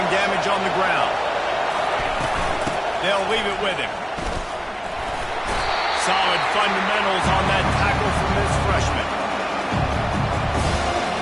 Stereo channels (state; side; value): identical; both; correlation 1.00